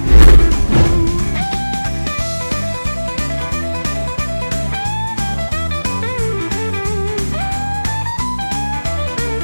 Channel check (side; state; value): both; inverted; correlation -1.00